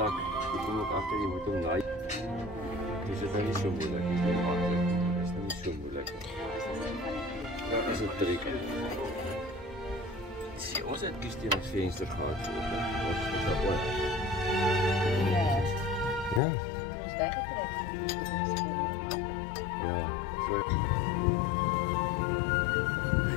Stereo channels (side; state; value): right; drops out; at 16.4 s